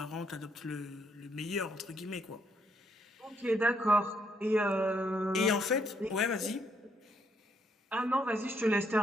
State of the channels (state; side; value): normal; both; correlation 0.72